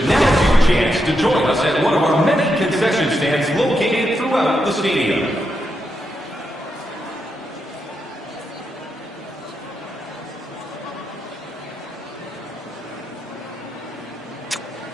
now's your chance to join us at one of our many concession stands located throughout the stadium.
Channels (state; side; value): normal; both; correlation 0.84